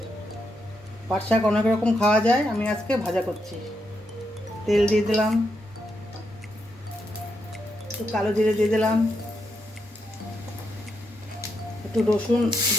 পাট শাক অনেক রকম খাওয়া যায়, আমি আজকে ভাজা করছি। তেল দিয়ে দিলাম, একটু কালো জিরে দিয়ে দিলাম, একটু রসুন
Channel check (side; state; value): both; normal; correlation 0.81